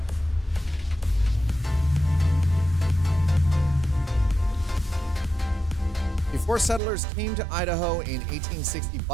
Before settlers came to Idaho in 1860,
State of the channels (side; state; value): left; drops out; at 6.8 s